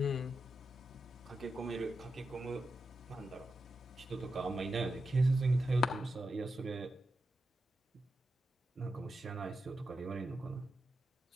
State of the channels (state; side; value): normal; both; correlation 0.88